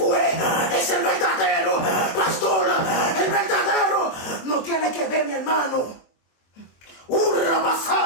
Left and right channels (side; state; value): right; late; 23 ms